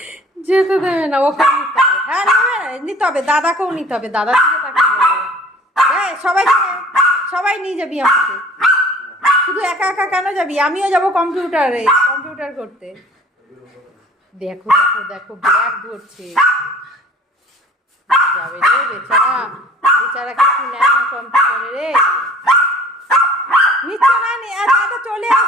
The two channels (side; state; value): both; normal; correlation 0.49